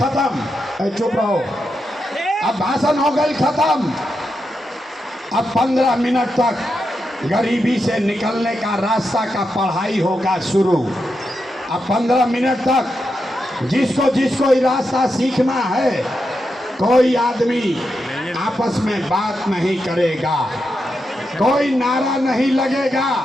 चुप रहो, अब भाषण हो गई खत्म। अब 15 मिनट तक गरीबी से निकलने का रास्ता का पढ़ाई होगा शुरू। अब 15 मिनट तक जिसको ये रास्ता सीखना है, कोई आदमी आपस में बात नहीं करेगा, कोई नारा नहीं लगेगा,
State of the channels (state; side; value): normal; both; correlation 0.86